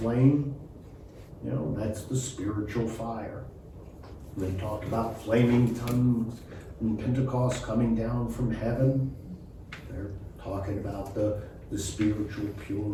That's the spiritual fire. They talk about flaming tongues in Pentecost coming down from heaven. They're talking about the spiritual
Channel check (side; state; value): both; identical; correlation 1.00